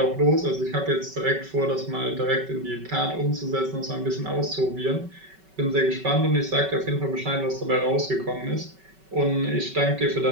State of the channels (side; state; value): left; late; 5.3 ms